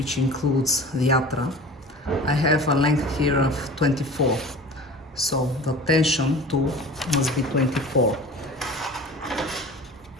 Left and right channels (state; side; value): normal; both; correlation 0.39